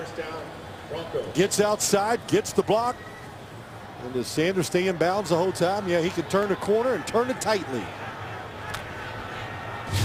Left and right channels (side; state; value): both; identical; correlation 1.00